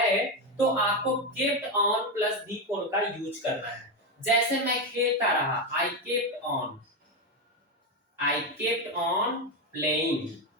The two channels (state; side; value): normal; both; correlation 0.10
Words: तो आपको kept on plus V four का यूज करना है। जैसे मैं खेलता रहा, I kept on playing.